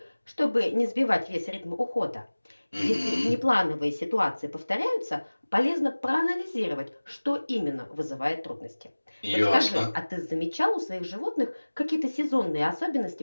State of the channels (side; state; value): both; inverted; correlation -1.00